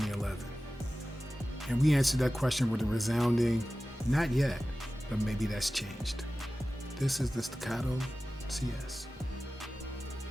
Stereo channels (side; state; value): both; normal; correlation 0.96